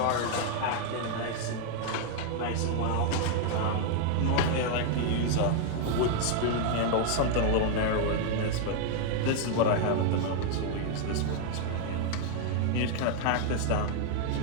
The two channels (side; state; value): both; different; correlation 0.00